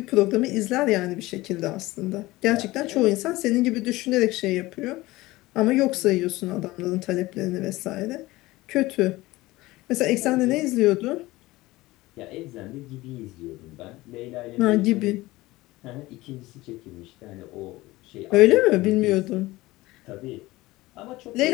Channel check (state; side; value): quieter; right; 19.2 dB